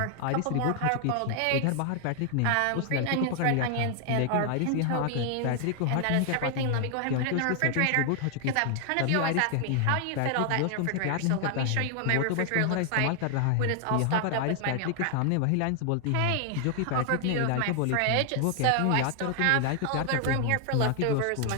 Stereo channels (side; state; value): both; different; correlation 0.00